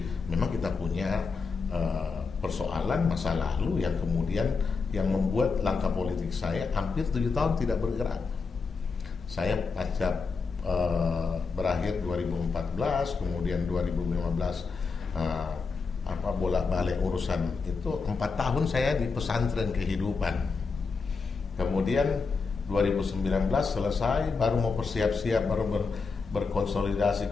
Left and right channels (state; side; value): quieter; right; 4.7 dB